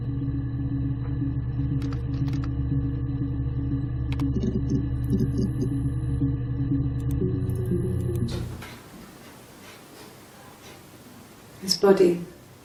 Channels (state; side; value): identical; both; correlation 1.00